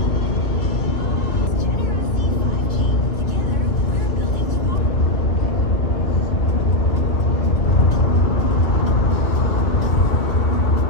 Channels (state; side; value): late; right; 2.3 ms